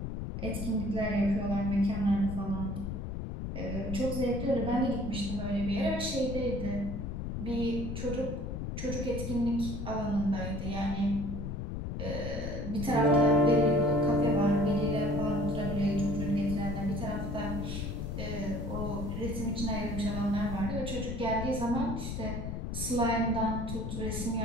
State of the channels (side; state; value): left; noise; rumble, 4 dB below the sound